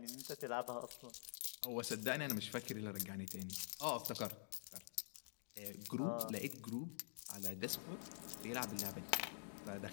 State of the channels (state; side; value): silent; right; digital silence